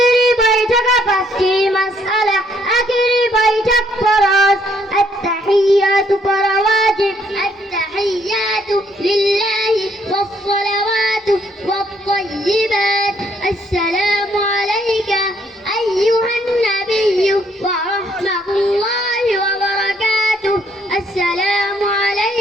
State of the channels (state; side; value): normal; both; correlation 0.68